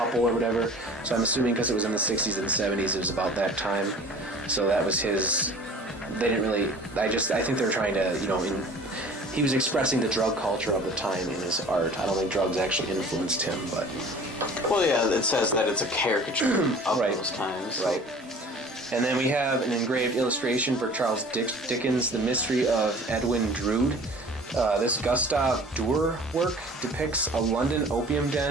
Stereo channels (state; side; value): normal; both; correlation 0.45